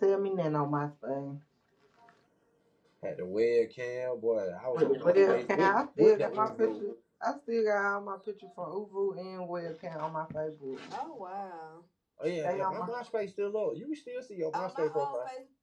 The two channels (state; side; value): identical; both; correlation 1.00